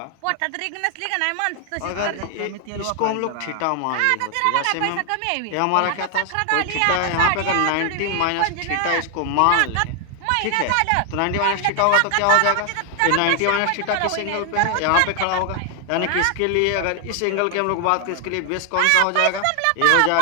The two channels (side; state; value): both; different; correlation 0.00